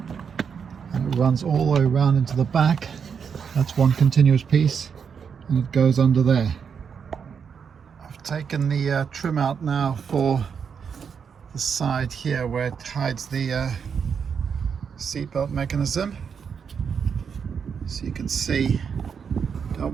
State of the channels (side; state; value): left; quieter; 6.7 dB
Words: it runs all the way around into the back. That's one continuous piece and it goes under there. I've taken the trim out now for the side here where it hides the seatbelt mechanism. So you can see,